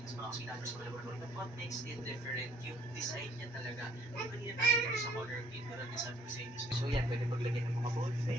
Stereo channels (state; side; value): normal; both; correlation 0.62